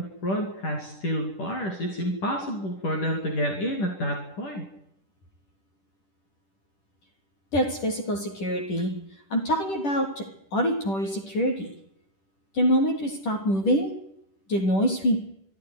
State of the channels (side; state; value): right; late; 10 ms